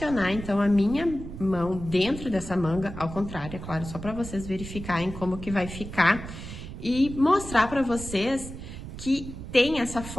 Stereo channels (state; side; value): noise; right; rumble, 10 dB below the sound